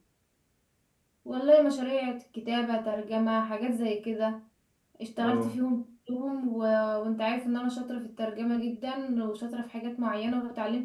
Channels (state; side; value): identical; both; correlation 1.00